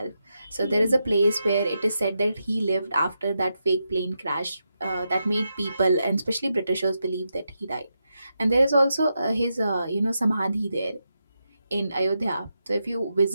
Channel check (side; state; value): both; inverted; correlation -0.86